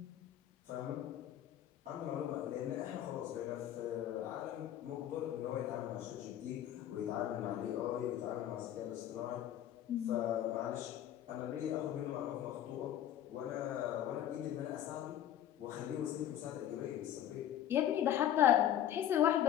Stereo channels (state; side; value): quieter; right; 11.2 dB